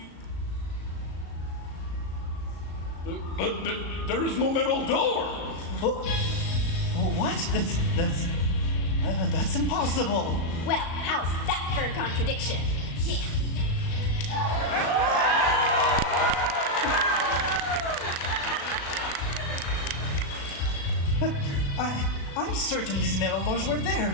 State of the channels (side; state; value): right; late; 36 ms